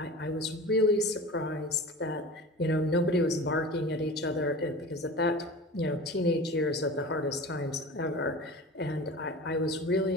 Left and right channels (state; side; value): normal; both; correlation 0.35